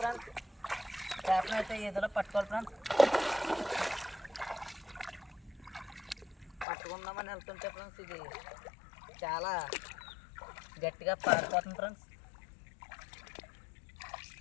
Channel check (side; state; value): right; drops out; at 6.7 s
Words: ఫ్రెండ్స్. చేపను అయితే ఏదో పట్టుకోవాలి ఫ్రెండ్స్. పట్టుకుందామని వెళ్తుంటే ఫ్రెండ్స్ ఇది చాలా గట్టిగా పారిపోతుంది ఫ్రెండ్స్.